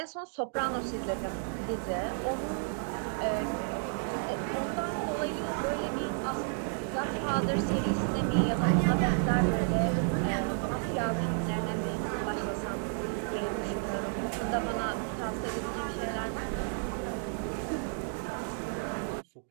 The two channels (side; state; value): left; silent; 57 dB below the other